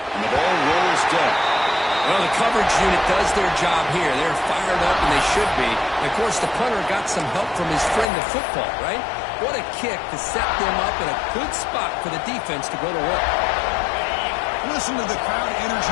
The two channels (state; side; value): drops out; right; at 8.1 s